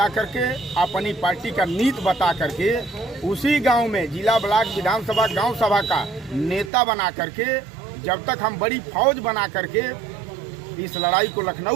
कर के अपनी पार्टी का नीति बता करके उसी गांव में जिला, ब्लॉक, विधानसभा, गांव सभा का नेता बना करके जब तक हम बड़ी फौज बना करके इस लड़ाई को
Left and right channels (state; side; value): drops out; left; at 6.7 s